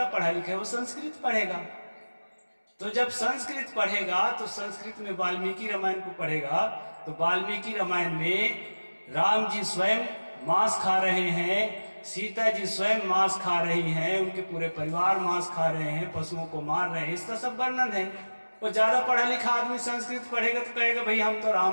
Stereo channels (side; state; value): both; inverted; correlation -1.00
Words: पढ़ा लिखा है वो संस्कृत पढ़ेगा। तो जब संस्कृत पढ़ेगा तो संस्कृत में वाल्मीकि रामायण को पढ़ेगा, तो वाल्मीकि रामायण में राम जी स्वयं मांस खा रहे हैं, सीता जी स्वयं मांस खा रही हैं, उनके पूरे परिवार मांस खा रहे हैं, पशुओं को मार रहे हैं, इसका सब वर्णन है। वो ज्यादा पढ़ा लिखा आदमी संस्कृत पढ़ेगा तो कहेगा भाई हम तो